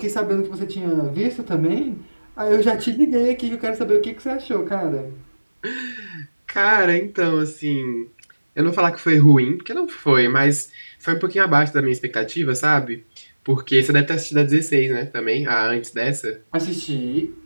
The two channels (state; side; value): inverted; both; correlation -1.00